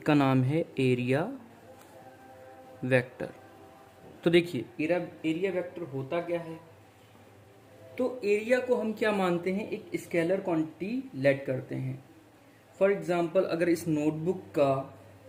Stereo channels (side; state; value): both; identical; correlation 1.00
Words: का नाम है एरिया वेक्टर। तो देखिए एरिया वेक्टर होता क्या है। तो एरिया को हम क्या मानते हैं, एक स्केलर क्वांटिटी लेट करते हैं। फॉर एग्जांपल अगर इस नोटबुक का